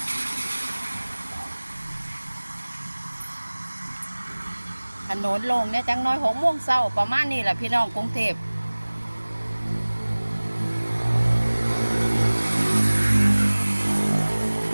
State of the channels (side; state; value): both; inverted; correlation -1.00